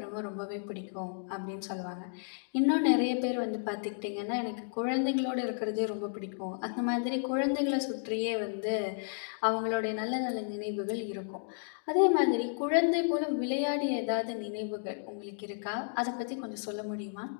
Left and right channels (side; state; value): right; silent; digital silence